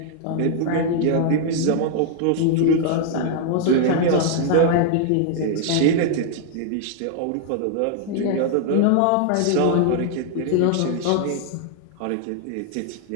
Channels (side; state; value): both; different; correlation 0.00